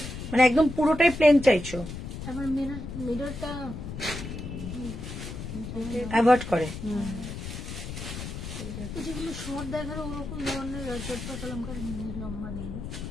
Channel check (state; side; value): noise; left; rumble, 8 dB below the sound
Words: মানে একদম পুরোটাই প্লেন চাইছো? আবার মিররটা অ্যাভয়েড করে। যেগুলো শর্ট দেখার ওরকম ধরনের চটপা কলমকার লম্বা নেই।